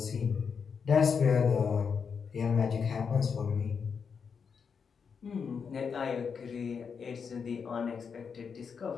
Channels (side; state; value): right; quieter; 6.1 dB